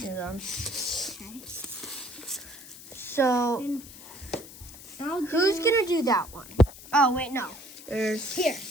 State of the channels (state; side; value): noise; left; hiss, 16 dB below the sound